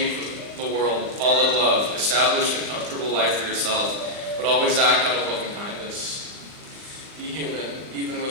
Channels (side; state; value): left; late; 39 ms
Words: the world, fall in love, establish a comfortable life for yourself, but always act out of loving kindness. Be human, even